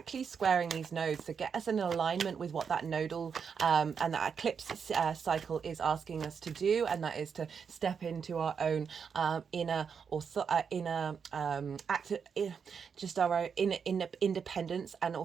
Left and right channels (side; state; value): left; quieter; 6.5 dB